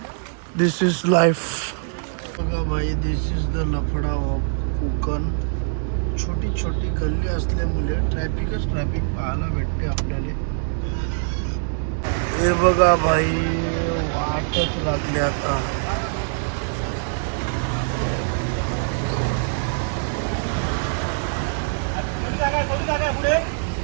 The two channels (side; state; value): left; silent; digital silence